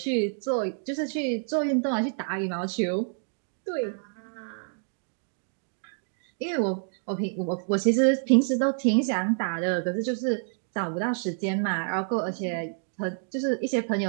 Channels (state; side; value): silent; left; digital silence